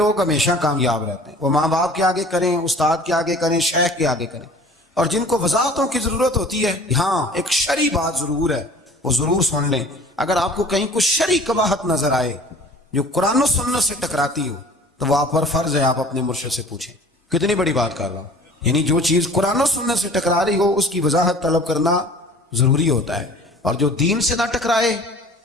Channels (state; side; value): normal; both; correlation 0.47